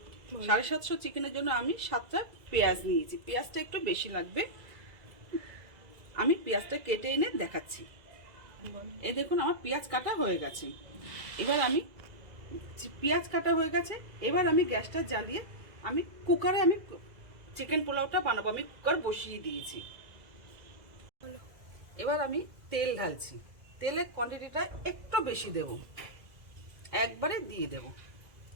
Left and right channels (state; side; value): late; left; 2.0 ms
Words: 750 চিকেনের জন্য আমি 7টা পেঁয়াজ নিয়েছি। পেঁয়াজটা একটু বেশি লাগবে। আমি পেঁয়াজটা কেটে এনে দেখাচ্ছি। এই দেখুন, আমার পেঁয়াজ কাটা হয়ে গেছে। এবার আমি পেঁয়াজ কাটা হয়ে গেছে। এবার আমি গ্যাসটা জ্বালিয়ে আমি কুকারে চিকেন পোলাওটা বানাবো। আমি কুকার বসিয়ে দিয়েছি। এবার আমি তেল ঢালছি। তেলের কোয়ান্টিটিটা একটু বেশি দেব, একবারে দিয়ে দেব।